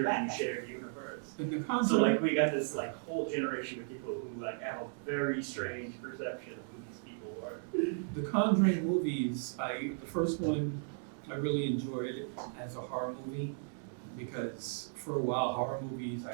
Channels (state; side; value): silent; left; digital silence